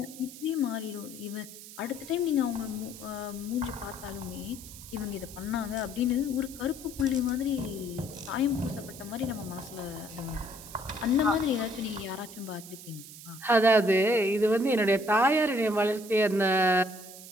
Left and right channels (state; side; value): noise; right; hiss, 15 dB below the sound